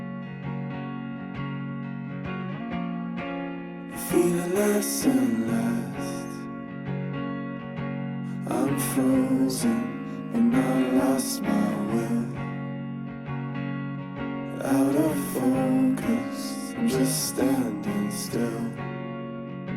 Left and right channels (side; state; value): both; identical; correlation 1.00